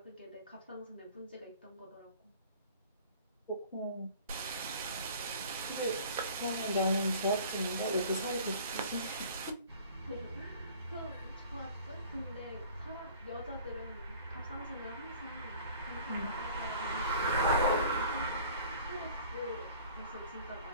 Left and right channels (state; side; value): inverted; both; correlation -0.48